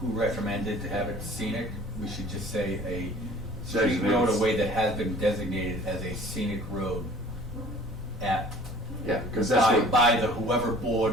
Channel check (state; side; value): normal; both; correlation 0.49